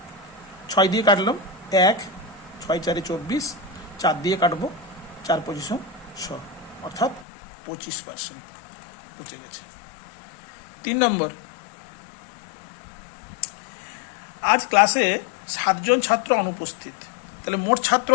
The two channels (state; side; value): drops out; right; at 7.2 s